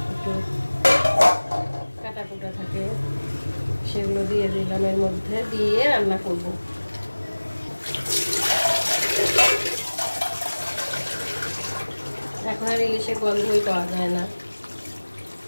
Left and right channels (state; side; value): inverted; both; correlation -1.00